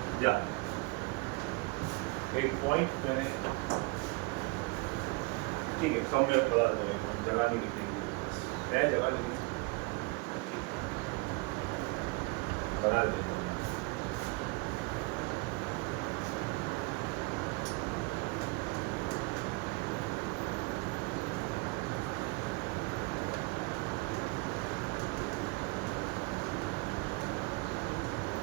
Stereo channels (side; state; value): left; quieter; 26.7 dB